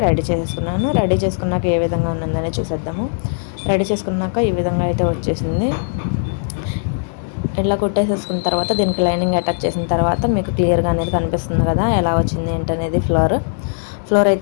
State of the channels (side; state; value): right; silent; digital silence